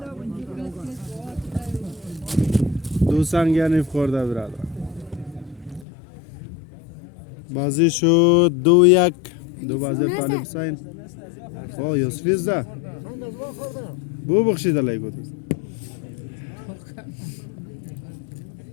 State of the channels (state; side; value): drops out; right; at 5.9 s